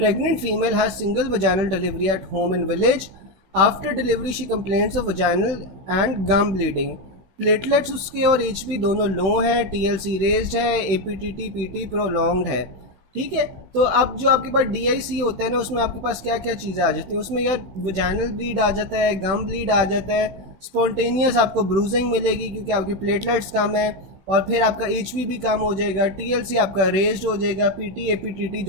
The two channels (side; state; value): left; late; 16 ms